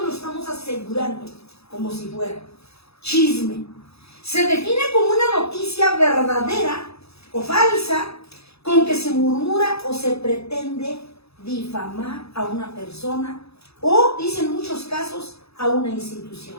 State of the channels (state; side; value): late; right; 0.78 ms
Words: lo estamos asegurando como si fuera. Chisme se define como una noticia verdadera o falsa con que se murmura o se pretende difamar a una persona o, dice en muchos casos, a una institución.